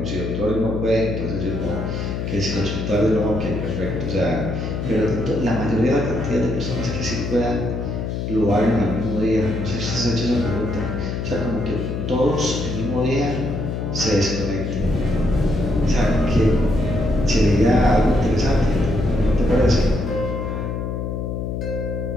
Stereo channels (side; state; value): left; noise; hum, 3 dB below the sound